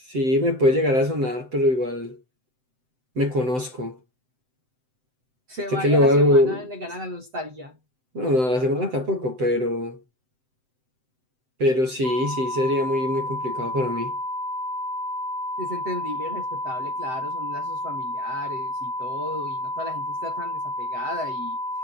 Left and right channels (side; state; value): left; late; 7.8 ms